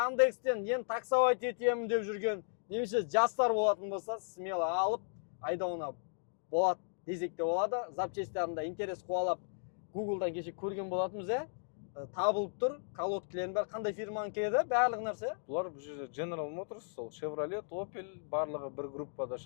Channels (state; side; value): silent; right; digital silence